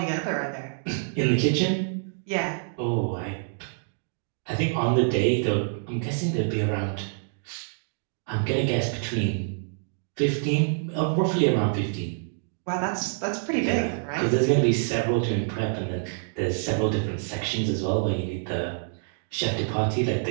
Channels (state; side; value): silent; left; digital silence